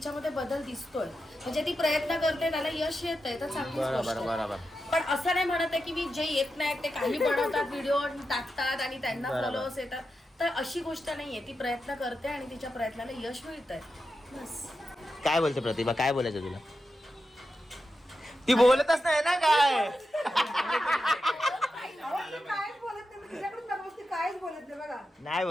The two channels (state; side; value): normal; both; correlation 0.89